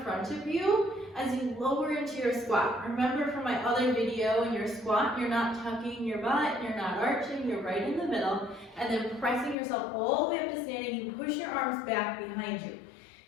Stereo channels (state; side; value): drops out; right; at 9.6 s